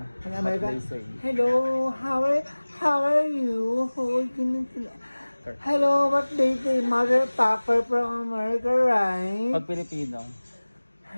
Pag Amerika. What they say. Hello, how are you? Hello, what they say? Mother Papa from America, right? Pag Pilipino.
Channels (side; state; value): both; inverted; correlation -1.00